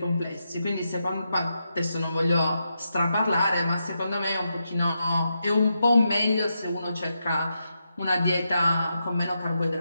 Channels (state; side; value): inverted; both; correlation -0.85